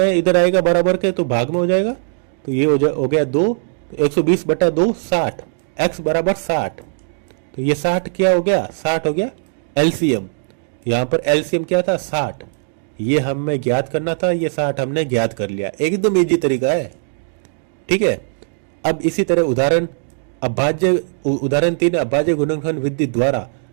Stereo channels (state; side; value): silent; left; digital silence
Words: इधर आएगा बराबर के तो भाग में हो जाएगा, तो ये हो गया 2, तो 120 बट्टा 2 60, x बराबर 60, तो ये 60 क्या हो गया, 60 हो गया एलसीएम। यहाँ पर एलसीएम क्या था 60, ये हमें ज्ञात करना था, ये 60 हमने ज्ञात कर लिया, एकदम इजी तरीका है। ठीक है, अब इसी तरह उदाहरण 3 अभाज्य गुणनखंड विधि द्वारा